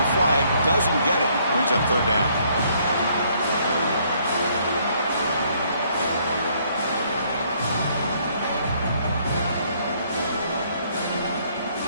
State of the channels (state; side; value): inverted; both; correlation -0.66